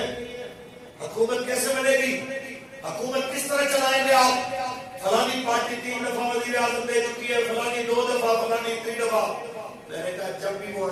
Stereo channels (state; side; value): identical; both; correlation 1.00